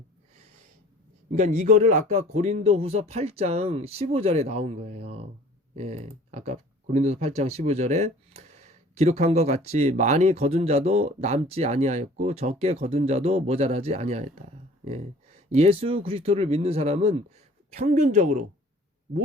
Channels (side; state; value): both; normal; correlation 0.49